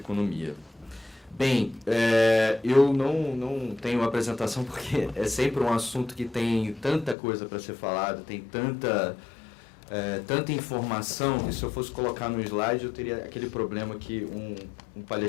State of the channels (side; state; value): right; drops out; at 7.2 s